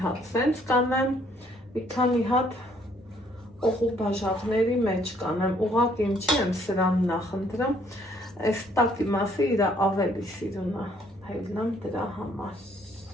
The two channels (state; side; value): normal; both; correlation 0.65